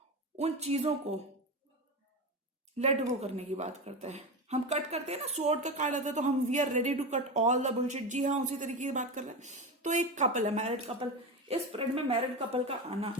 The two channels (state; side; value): normal; both; correlation 0.20